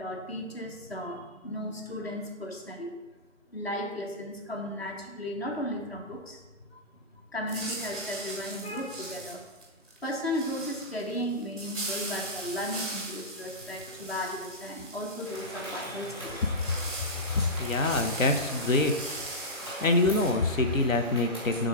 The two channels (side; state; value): both; normal; correlation -0.12